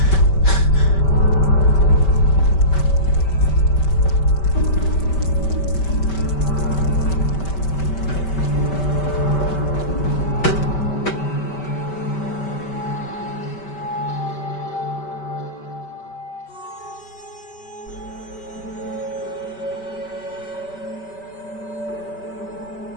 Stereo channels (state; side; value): late; right; 5.2 ms